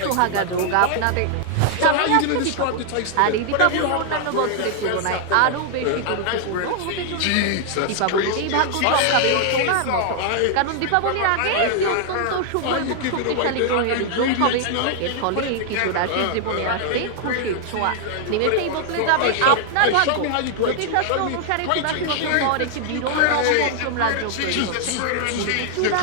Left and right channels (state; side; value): different; both; correlation 0.00